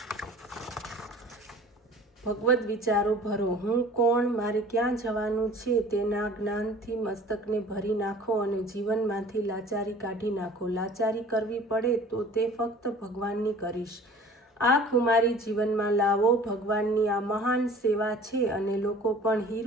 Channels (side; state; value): both; normal; correlation 0.47